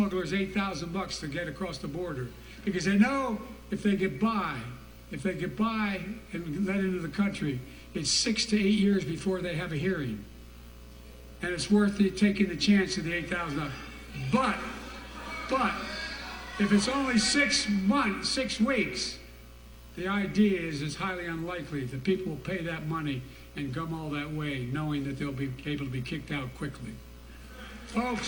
$8,000 to get across the border because they know if they get by and let into the country, it's 6 to 8 years before they have a hearing. And it's worth it taking the chance of the $8,000. But if it's only 6 weeks, the idea is it's highly unlikely that people will pay that money and come all that way, knowing that they'll be able to be kicked out quickly.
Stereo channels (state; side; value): identical; both; correlation 1.00